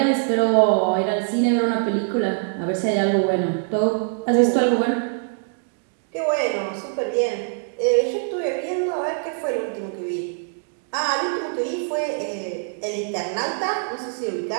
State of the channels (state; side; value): silent; left; digital silence